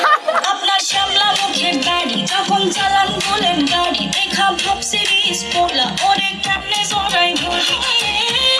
আপনার শ্যামলা মুখের দাড়ি যখন চালান বলেন গাড়ি দেখা ভাব সিরিজ পোলা ওরে কেমনে জড়াই ধরি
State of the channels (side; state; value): both; identical; correlation 1.00